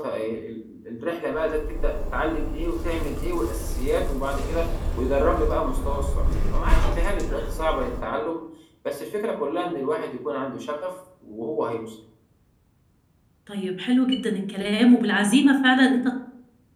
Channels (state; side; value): identical; both; correlation 1.00